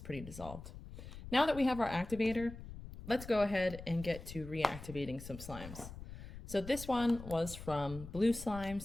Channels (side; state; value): left; noise; rumble, 12 dB below the sound